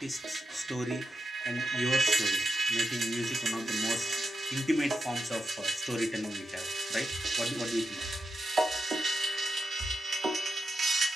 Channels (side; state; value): both; normal; correlation 0.88